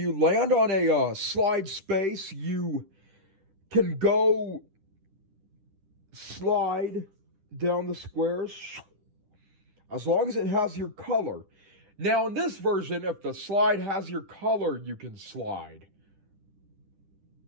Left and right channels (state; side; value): late; left; 10 ms